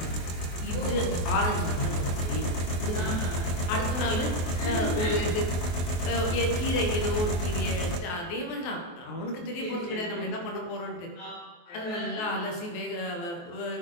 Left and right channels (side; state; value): right; late; 23 ms